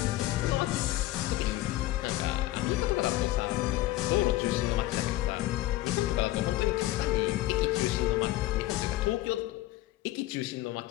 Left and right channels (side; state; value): right; quieter; 16.6 dB